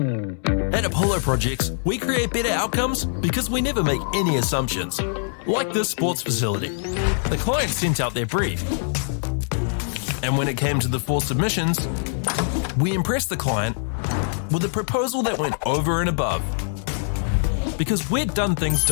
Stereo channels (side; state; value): right; silent; 63 dB below the other